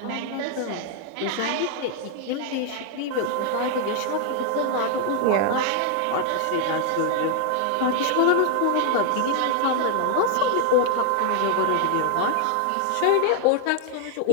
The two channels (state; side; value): different; both; correlation 0.00